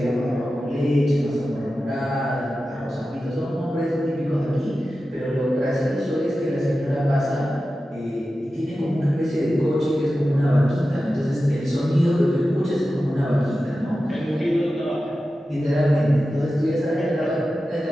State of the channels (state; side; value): normal; both; correlation 0.93